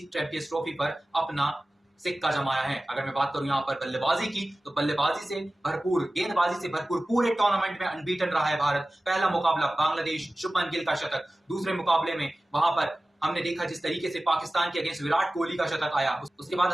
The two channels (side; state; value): both; normal; correlation 0.96